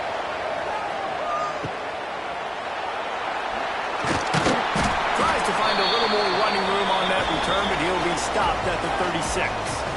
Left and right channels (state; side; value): identical; both; correlation 1.00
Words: Tries to find a little more running room on that return, but he'll be stopped at the 36.